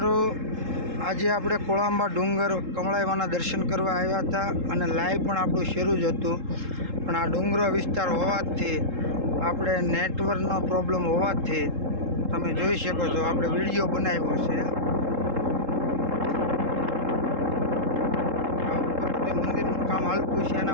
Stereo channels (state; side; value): late; left; 3.7 ms